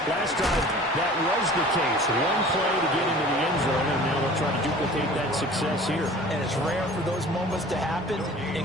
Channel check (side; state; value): both; normal; correlation 0.44